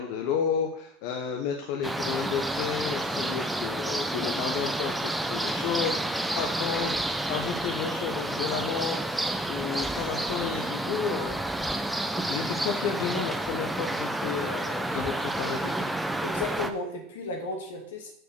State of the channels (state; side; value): normal; both; correlation 0.57